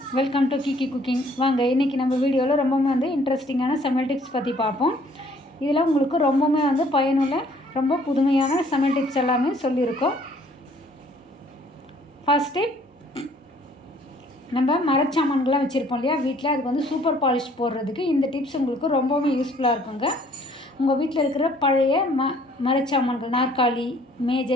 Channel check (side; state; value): both; normal; correlation 0.59